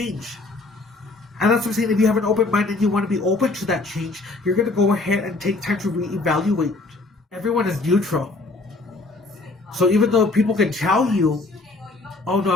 And that's what I'm saying, if you have an open mind and you want to be open to that change, you're going to go ahead and take time to reevaluate. Everyone is neutral. So even though people can tell you, oh no,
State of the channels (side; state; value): right; quieter; 3.2 dB